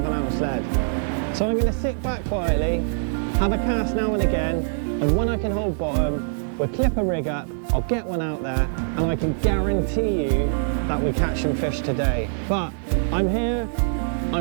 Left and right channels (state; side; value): silent; left; digital silence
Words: lead. So I'm going to sit back quietly, have a cast now and again, and when I can hold bottom, we'll clip a rig up, I'll get one out there, and I can guarantee you that we catch some fish today. But I'm here,